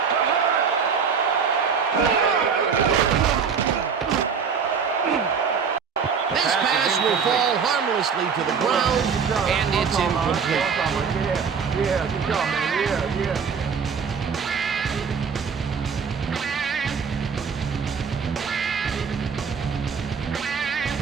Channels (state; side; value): quieter; left; 6.2 dB